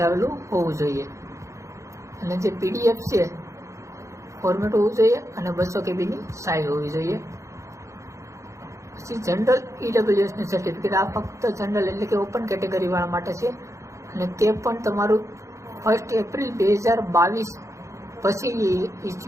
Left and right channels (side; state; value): left; late; 0.15 ms